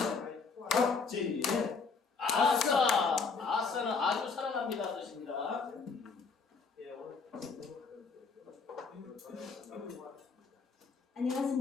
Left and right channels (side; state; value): right; quieter; 4.9 dB